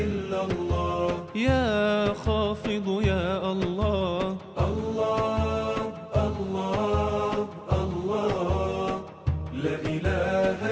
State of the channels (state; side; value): identical; both; correlation 1.00